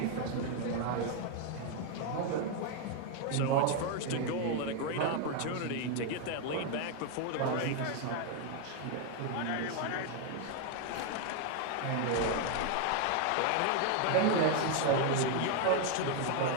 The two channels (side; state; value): both; different; correlation 0.01